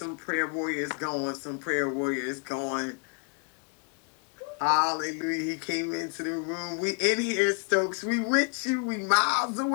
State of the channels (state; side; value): quieter; right; 38.6 dB